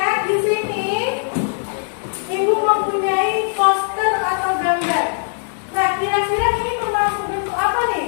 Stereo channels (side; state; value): right; silent; digital silence